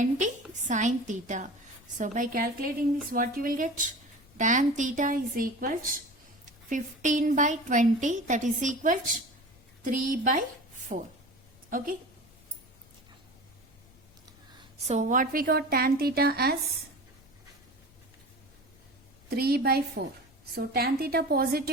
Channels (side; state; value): left; noise; rumble, 27 dB below the sound